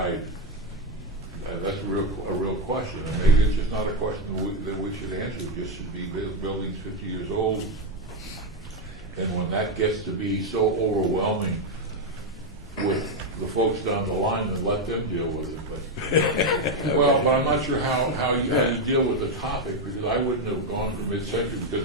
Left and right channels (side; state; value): both; normal; correlation 0.06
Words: That's a real question, and maybe it's just not a question that we should answer. It just should be buildings 50 years old, and when that gets to be so overwhelming with the folks down the line, then let them deal with it. But but I'm not sure how you deal with the topic, because I wouldn't have gone for mid-century because